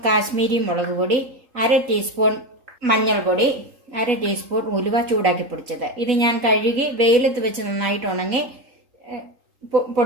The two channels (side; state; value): left; late; 3.8 ms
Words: കാശ്മീരി മുളക് പൊടി, 1/2 ടീസ്പൂൺ മഞ്ഞൾപ്പൊടി, 1/2 ടീസ്പൂൺ ഉലുവ ചൂടാക്കി പൊടിച്ചത്. ഇത് ഞാൻ കഴുകി വെയിലത്ത് വെച്ച് നന്നായിട്ട് ഉണങ്ങി